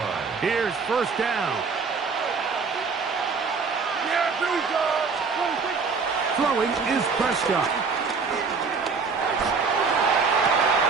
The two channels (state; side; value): quieter; left; 5.0 dB